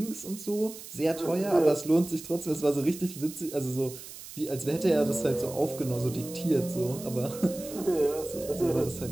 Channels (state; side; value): noise; right; hiss, 14 dB below the sound